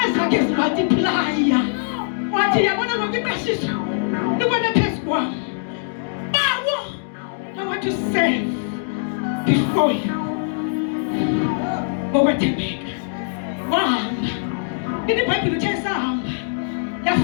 ezakhe zimultiplya. Wathi yabona ngokuqashisa. Nibona phezu kwami. Bawo I want to serve before you. Ngokwethembeka. Wahamba. Ini Bible uthe sahamba.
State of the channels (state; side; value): silent; right; 64 dB below the other